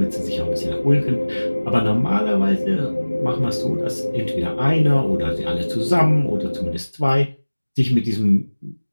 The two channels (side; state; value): both; inverted; correlation -1.00